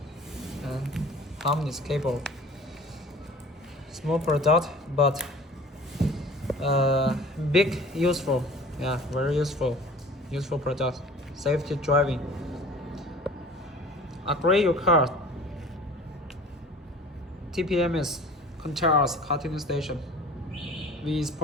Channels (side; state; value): both; normal; correlation 0.44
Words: And harmonious cable. Small product, but big, useful. Yeah, very useful product. Safety driving. Upgrade your car. TPMS controls car tuning station. We